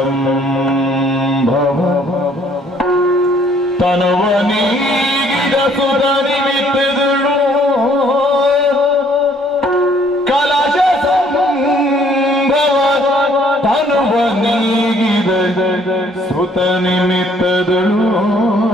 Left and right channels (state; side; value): normal; both; correlation 0.62